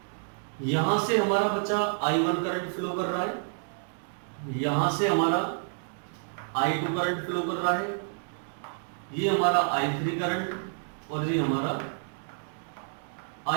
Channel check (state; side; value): silent; left; digital silence